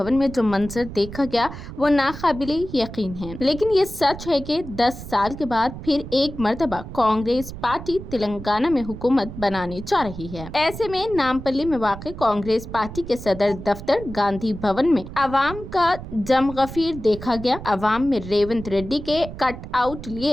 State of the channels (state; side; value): noise; right; rumble, 11 dB below the sound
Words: में जो मंजर देखा गया वो नाकाबिले यकीन है। लेकिन ये सच है कि 10 साल के बाद फिर एक मर्तबा कांग्रेस पार्टी तेलंगाना में हुकूमत बनाने जा रही है। ऐसे में नामपल्ली में वाक़ कांग्रेस पार्टी के सदर दफ्तर गांधी भवन में अवाम का जमगफीर देखा गया। अवाम में रेवंत रेड्डी के कट आउट